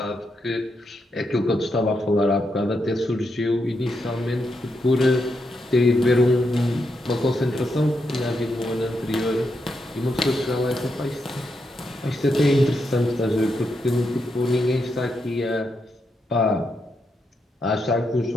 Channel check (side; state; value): both; normal; correlation 0.82